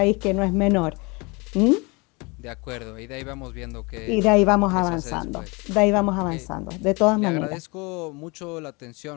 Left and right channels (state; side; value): quieter; right; 27.8 dB